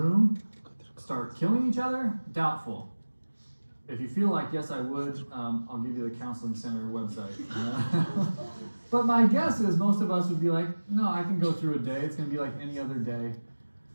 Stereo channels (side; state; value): both; inverted; correlation -1.00